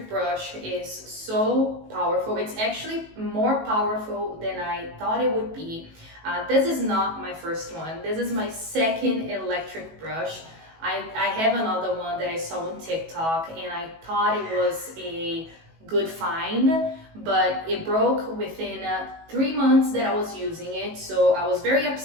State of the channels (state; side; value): late; left; 18 ms